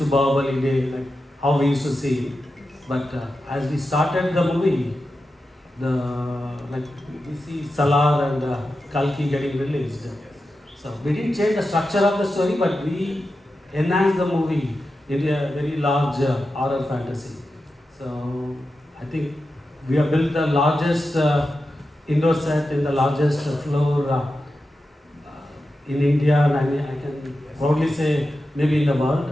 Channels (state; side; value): normal; both; correlation 0.91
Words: Bahubali day, like how we used to see him. But as we started the movie, we see Salar and Kalki getting released. So we didn't change the structure of the story, but we enhanced the movie into a very large horror fantasy. So I think we have built the largest indoor set in the largest floor in India, and I can proudly say maybe in the world.